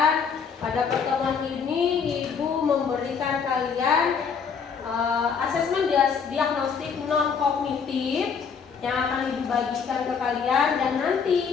Pada pertemuan ini Ibu memberikan kalian asesmen diagnostik non kognitif yang akan Ibu bagikan ke kalian dan nanti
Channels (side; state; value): right; quieter; 6.2 dB